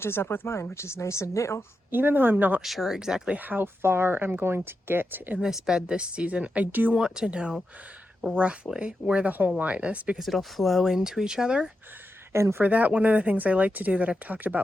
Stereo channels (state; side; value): normal; both; correlation 0.88